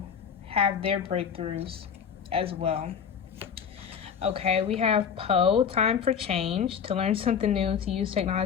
have their breakthroughs as well. Okay, we have Poe, time for change, to learn something new, to use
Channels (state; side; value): quieter; right; 7.3 dB